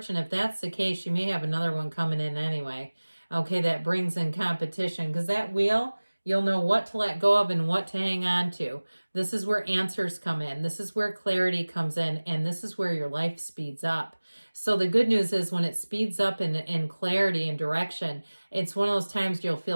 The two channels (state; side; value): inverted; both; correlation -1.00